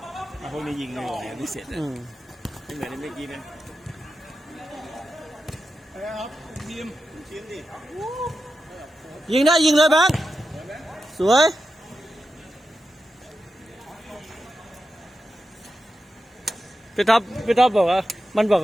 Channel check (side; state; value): both; normal; correlation 0.90